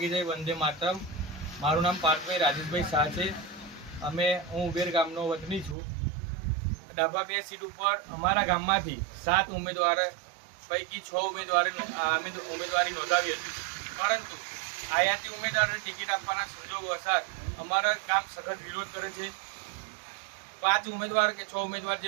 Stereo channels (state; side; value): drops out; left; at 5.8 s